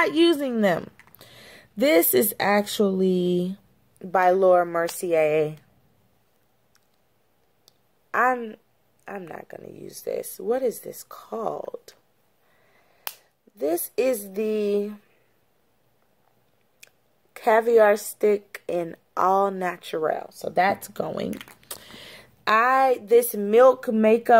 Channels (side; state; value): both; identical; correlation 1.00